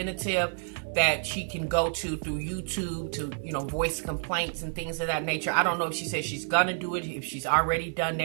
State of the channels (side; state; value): left; silent; 59 dB below the other